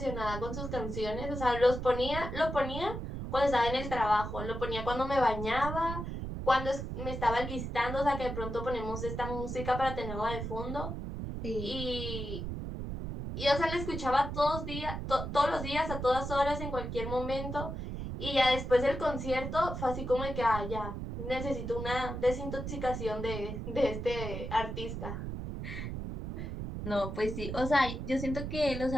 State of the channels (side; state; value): right; noise; rumble, 5 dB below the sound